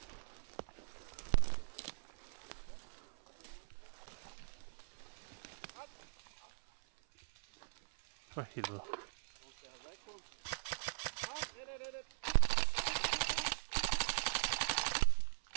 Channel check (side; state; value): left; silent; 50 dB below the other